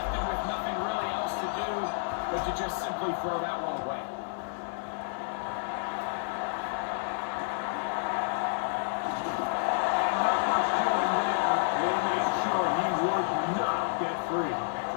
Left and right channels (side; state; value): right; silent; digital silence